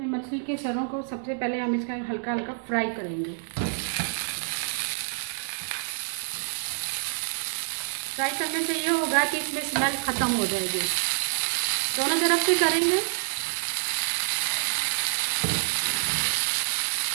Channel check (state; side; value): silent; left; digital silence